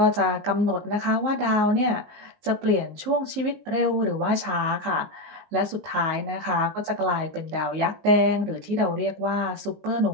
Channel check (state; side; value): late; left; 19 ms